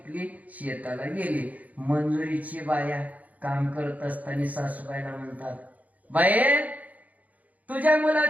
शेताला गेली. मंजुरीची बाया काम करत असताना सासूबाईला म्हणतात, बाई तुझ्या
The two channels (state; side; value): late; left; 0.074 ms